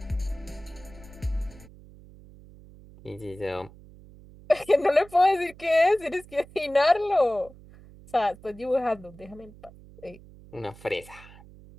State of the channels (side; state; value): right; noise; hum, 21 dB below the sound